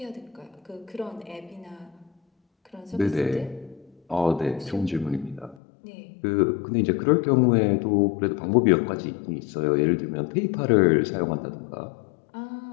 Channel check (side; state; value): right; drops out; at 5.6 s